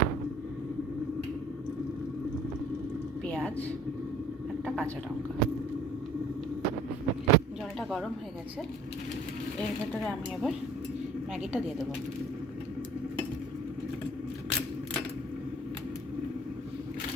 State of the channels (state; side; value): normal; both; correlation 0.52